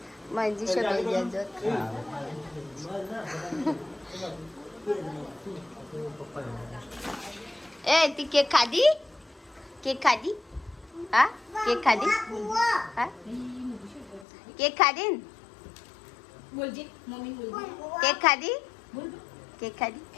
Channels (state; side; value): drops out; right; at 14.2 s